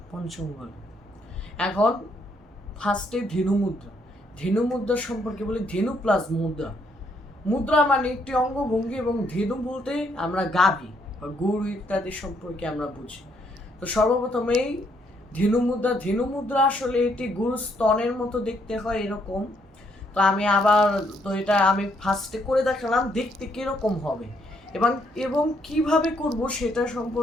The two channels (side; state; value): both; normal; correlation 0.72